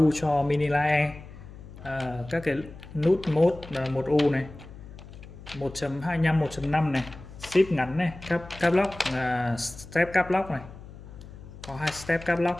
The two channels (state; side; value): noise; left; hum, 16 dB below the sound